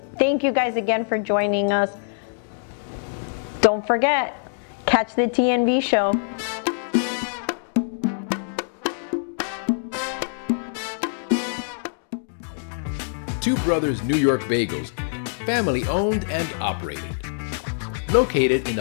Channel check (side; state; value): right; silent; digital silence